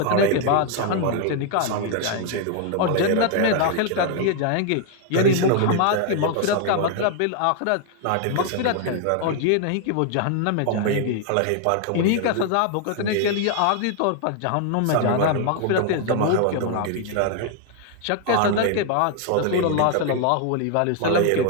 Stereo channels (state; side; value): different; both; correlation 0.00